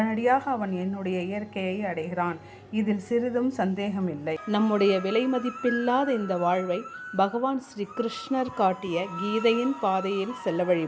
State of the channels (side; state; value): both; identical; correlation 1.00